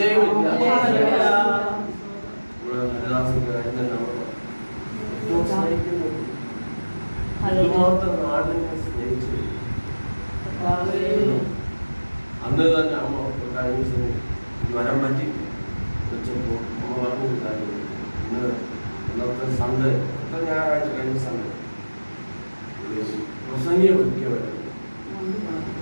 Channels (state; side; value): inverted; both; correlation -1.00